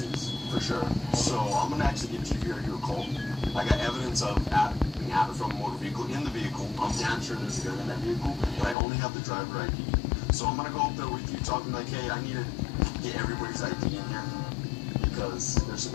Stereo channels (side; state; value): right; drops out; at 8.8 s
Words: for sure. So I'm gonna actually give GVRU a call. I got evidence of being added from a motor vehicle in the vehicle. I'm damn sure there's a gun in that vehicle, but I only have the driver ID. So I'm gonna go up there with you, talking like, hey, I need to get everybody's ID in here because there's